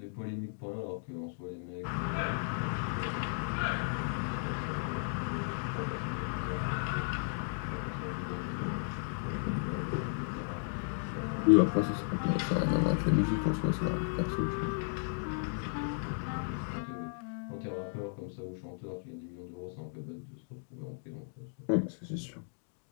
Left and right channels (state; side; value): silent; right; digital silence